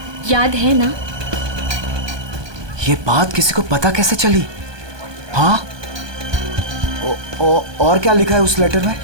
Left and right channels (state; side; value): late; left; 1.2 ms